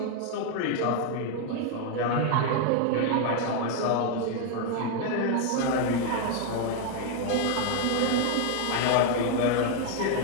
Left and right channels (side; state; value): both; different; correlation 0.00